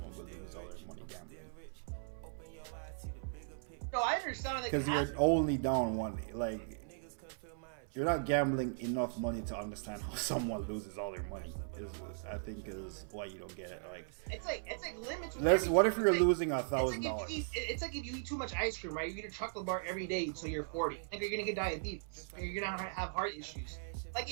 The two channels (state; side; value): silent; left; 52 dB below the other